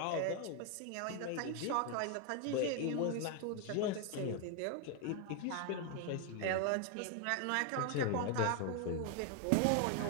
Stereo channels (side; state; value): both; different; correlation 0.01